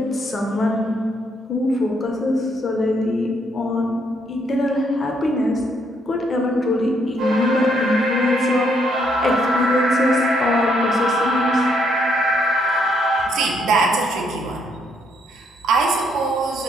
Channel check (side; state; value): both; normal; correlation 0.72